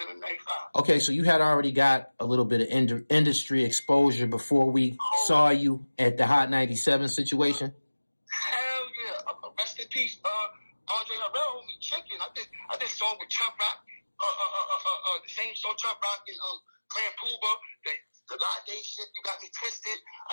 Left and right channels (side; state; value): both; inverted; correlation -1.00